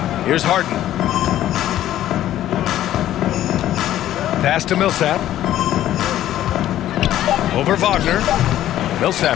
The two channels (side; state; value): right; quieter; 12.8 dB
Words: Here's Harden. Pass to Millsap. Over Wagner.